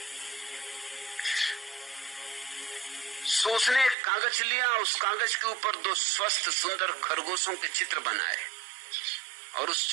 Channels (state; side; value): drops out; left; at 4.0 s